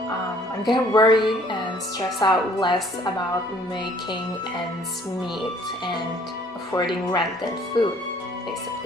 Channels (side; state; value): both; normal; correlation 0.58